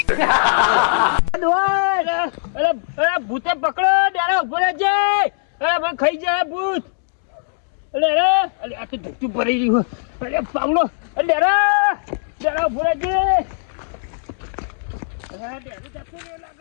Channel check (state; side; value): silent; right; digital silence